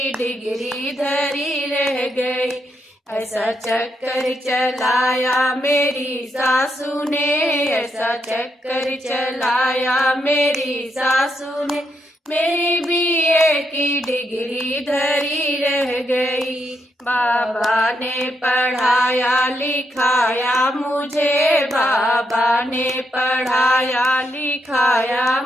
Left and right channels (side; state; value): both; normal; correlation 0.80